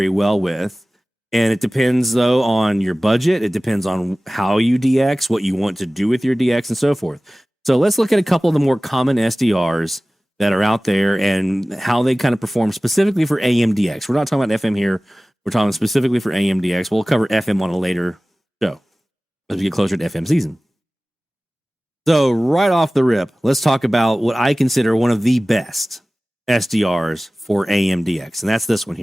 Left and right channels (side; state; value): both; normal; correlation 0.97